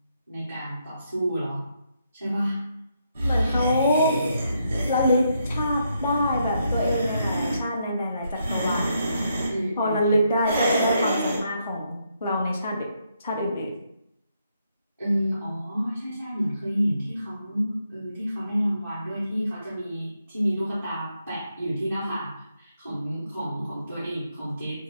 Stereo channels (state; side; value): inverted; both; correlation -0.78